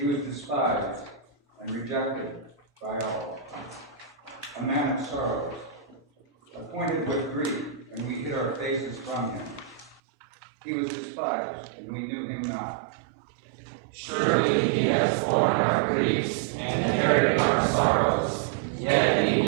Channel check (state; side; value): drops out; left; at 10.0 s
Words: was despised and rejected by all, a man of sorrows, acquainted with grief, and we hid our faces from him. He was despised, and we knew him not. Surely he has borne our griefs and carried our sorrows, yet we